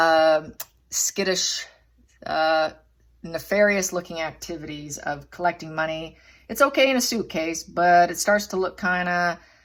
skittish, nefarious looking activities of collecting money. It's okay in a suitcase, but it starts to look kind of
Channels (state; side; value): identical; both; correlation 1.00